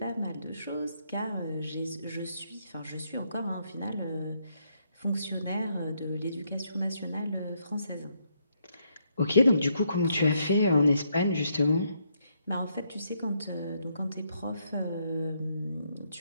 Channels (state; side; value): inverted; both; correlation -0.75